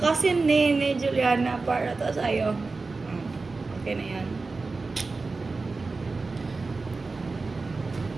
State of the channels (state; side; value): quieter; left; 3.9 dB